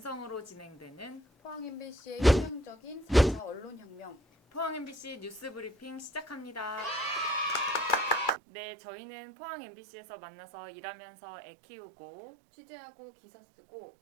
진행되는 포항 MBC의 혁명적인 4차 언론혁명. 포항 MBC 뉴스 브리핑 시작합니다. 네, 저희는 포항 MBC에서 만나서 일하면서 애 키우고 취재하고 기사 쓰고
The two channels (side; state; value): left; drops out; at 8.3 s